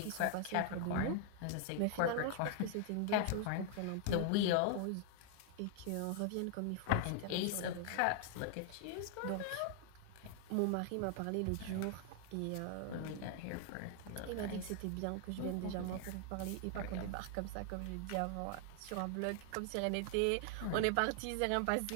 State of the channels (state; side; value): different; both; correlation 0.00